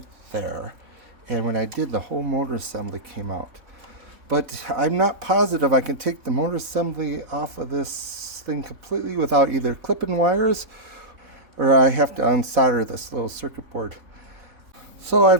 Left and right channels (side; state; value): left; late; 4.2 ms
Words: there, and when I did, the whole motor assembly came out. But I'm not positive I can take the motor assembly off of this thing completely without either clipping wires or I have to unsolder this little circuit board. So